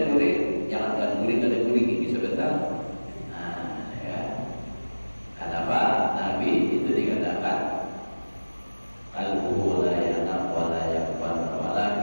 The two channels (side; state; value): both; inverted; correlation -1.00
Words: gurih, jangan kan gurih kada gurih gigi sebentar. Nah, ya. Kenapa Nabi itu dikatakan qalbuhu la yanam wa la yaqbal